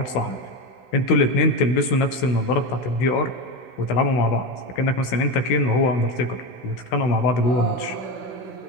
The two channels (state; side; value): late; right; 16 ms